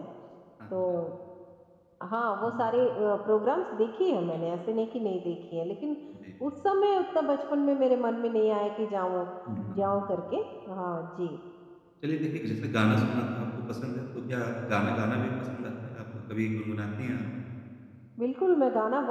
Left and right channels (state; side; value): identical; both; correlation 1.00